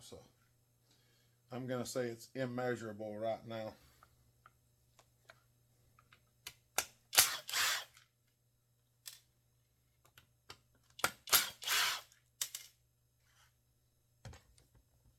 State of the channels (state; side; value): identical; both; correlation 1.00